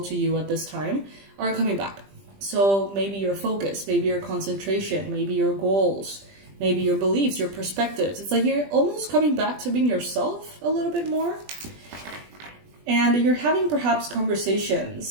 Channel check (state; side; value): late; left; 20 ms